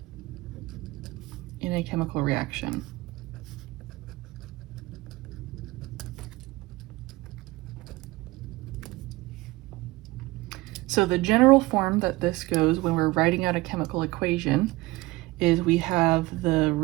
In a chemical reaction. So the general form that this goes when we're writing out a chemical equation is we have the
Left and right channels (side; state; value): left; quieter; 20.7 dB